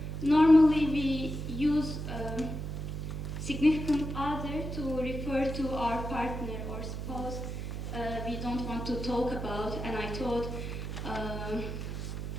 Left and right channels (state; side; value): noise; right; hum, 5 dB below the sound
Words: normally we use significant other to refer to our partner or spouse we don't want to talk about, and I thought